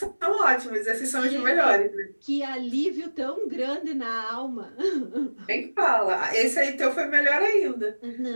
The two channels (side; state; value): both; inverted; correlation -1.00